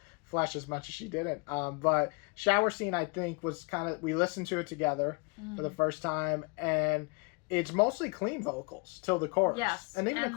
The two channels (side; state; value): right; quieter; 31.0 dB